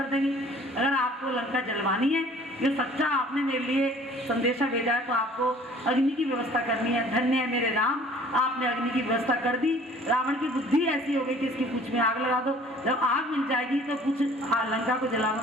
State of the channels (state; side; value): normal; both; correlation 0.52